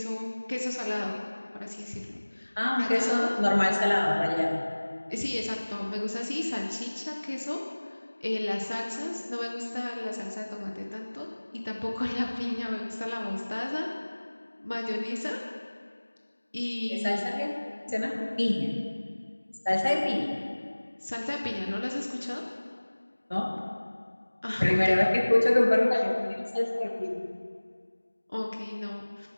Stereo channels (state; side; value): inverted; both; correlation -1.00